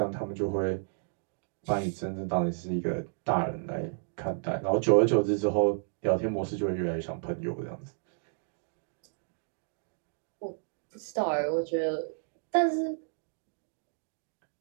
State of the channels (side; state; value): left; silent; digital silence